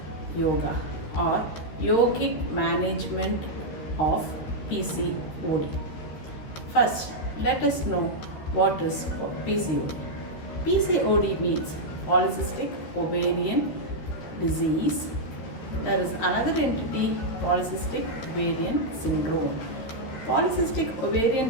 yoga or yogic management of PCOD. First, let us know what is PCOD. PCOD means polycystic ovarian disease. There is another entity, polycystic ovarian syndrome. Polycystic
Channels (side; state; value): right; late; 13 ms